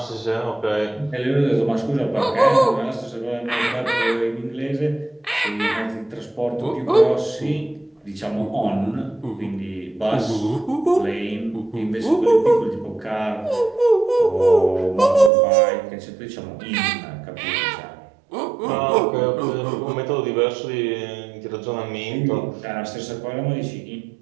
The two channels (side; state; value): left; drops out; at 15.3 s